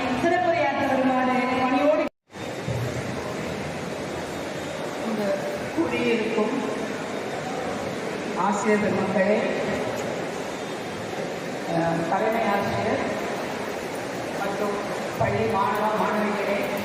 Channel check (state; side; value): identical; both; correlation 1.00